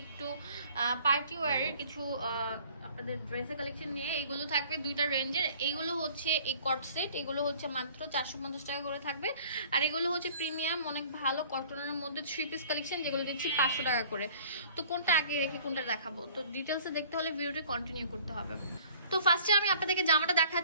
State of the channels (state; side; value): inverted; both; correlation -0.52